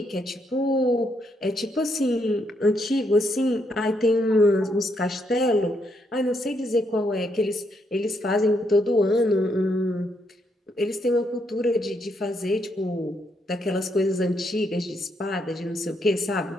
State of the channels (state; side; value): normal; both; correlation 0.76